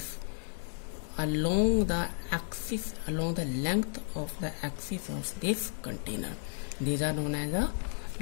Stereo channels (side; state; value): right; silent; 56 dB below the other